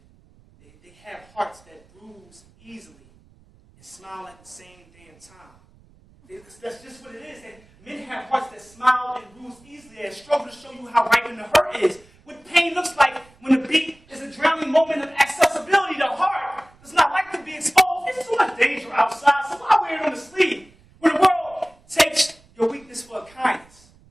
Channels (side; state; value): right; noise; rumble, 29 dB below the sound